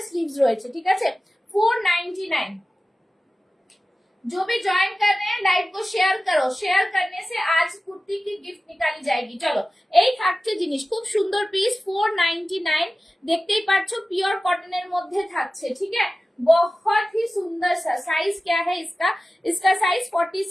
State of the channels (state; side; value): normal; both; correlation 0.96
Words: স্লিভস রয়েছে, ঠিক আছে, 499। जो भी ज्वाइन कर रहे हैं लाइव को शेयर करो, शेयर करने से आज कुर्ती की गिफ्ट निकाली जाएगी। चलो এই থাকছে জিনিস, খুব সুন্দর পিস, 499, দেখতেই পাচ্ছ পিওর কটনের মধ্যে থাকছে, ঠিক है, बहुत ही सुंदर सा। साइज क्या है इसका, इसका साइज